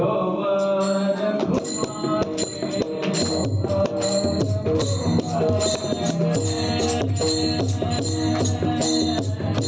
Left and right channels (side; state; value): both; identical; correlation 1.00